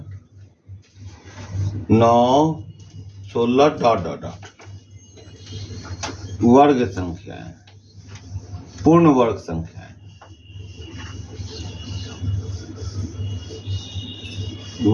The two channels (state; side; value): identical; both; correlation 1.00